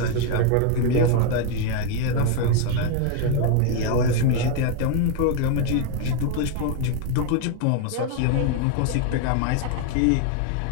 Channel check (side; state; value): both; different; correlation 0.01